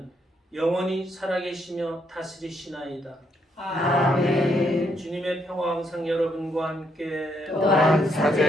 영원히 살아계시며 다스리시나이다. 아멘. 주님의 평화 항상 여러분과 함께 또한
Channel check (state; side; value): normal; both; correlation 0.75